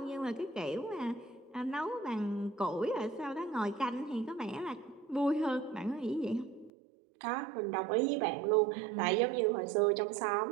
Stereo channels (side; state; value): left; drops out; at 6.7 s